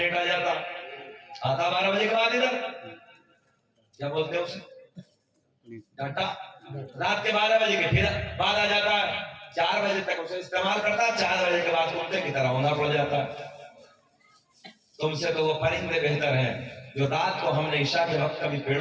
آ جاتا. آتا 12 بجے کے بعد ادھر کیا بولتے ہیں اسے ڈاٹا, رات کے 12 بجے کے پھر بعد آ جاتا ہے. 4 بجے تک اسے استعمال کرتا ہے, 4 بجے کے بعد کتے کی طرح ہونا پڑ جاتا ہے. تم سے تو وہ پرندے بہتر ہیں جو رات کو ہم نے عشاء کے وقت کبھی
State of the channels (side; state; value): both; identical; correlation 1.00